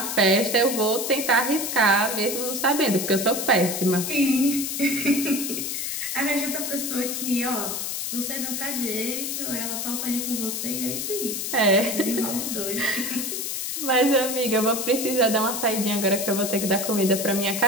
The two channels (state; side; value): noise; left; hiss, 3 dB below the sound